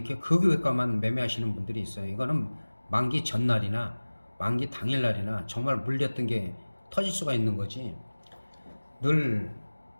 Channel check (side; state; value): both; inverted; correlation -1.00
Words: 극외곽만 매매하시는 분들이 있어요. 이거는 만기 전날이나 만기 당일날이나 정말 물렸던 게 터질 수가 있는 거지. 늘